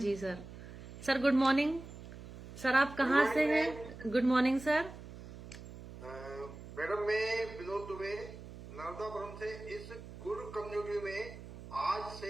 sir. Sir good morning. Sir आप कहाँ से हैं? Good morning sir. मैडम मैं विनोद दुबे नर्मदापुरम से इस गुरु कम्युनिटी में आज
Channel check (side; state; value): right; noise; hum, 14 dB below the sound